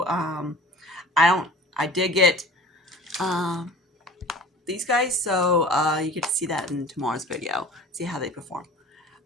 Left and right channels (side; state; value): both; normal; correlation 0.42